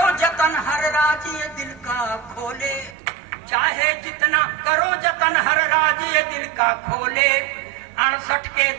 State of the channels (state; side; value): drops out; left; at 3.0 s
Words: जतन हर राज ये दिल का खोले, चाहे जितना करो जतन हर राज ये दिल का खोले। 68 के